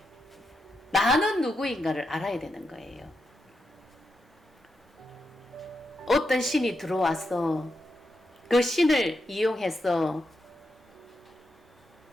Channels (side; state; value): both; normal; correlation 0.86